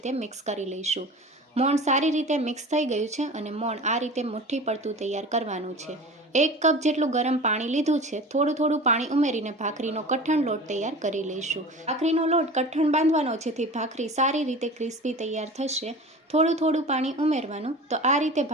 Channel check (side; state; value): both; normal; correlation 0.36